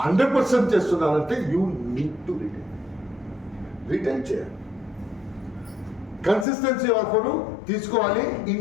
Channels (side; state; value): right; drops out; at 6.5 s